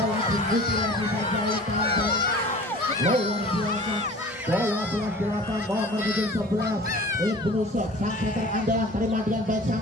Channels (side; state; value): both; normal; correlation 0.42